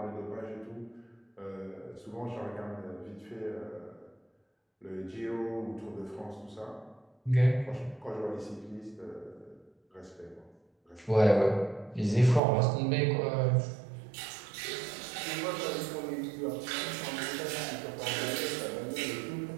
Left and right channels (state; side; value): drops out; left; at 12.4 s